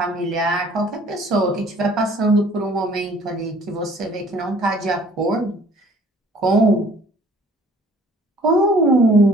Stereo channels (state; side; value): normal; both; correlation 0.54